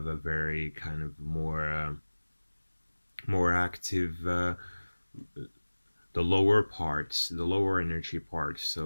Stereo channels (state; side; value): inverted; both; correlation -1.00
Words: a very kind of more active, the lower parts, the lower energy parts.